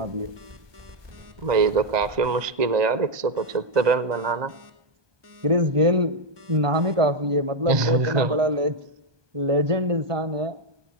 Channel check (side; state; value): left; late; 1.2 ms